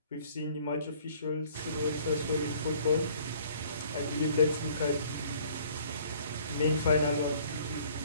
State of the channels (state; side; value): inverted; both; correlation -0.56